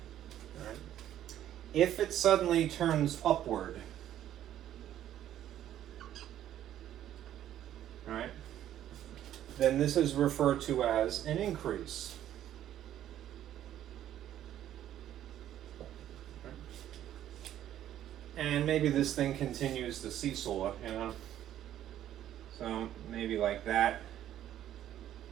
If it suddenly turns upward, right, then this is referred to as an increase. And maybe this thing continues to seesaw, you know. So maybe like that,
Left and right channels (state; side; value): quieter; left; 11.7 dB